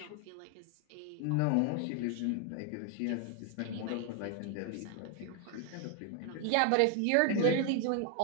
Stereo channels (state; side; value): different; both; correlation 0.00